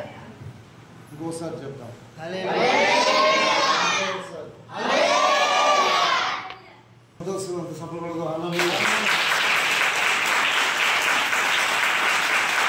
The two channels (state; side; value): identical; both; correlation 1.00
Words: ఇంకోసారి చెప్తాం. అంత సఫలపడదు.